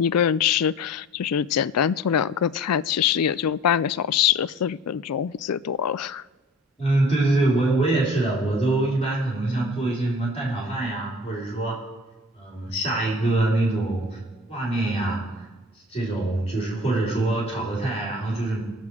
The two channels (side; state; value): both; normal; correlation 0.44